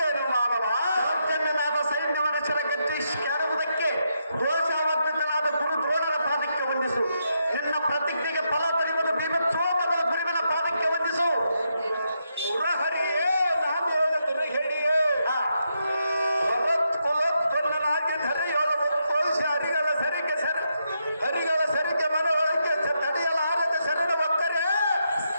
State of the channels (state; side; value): inverted; both; correlation -0.81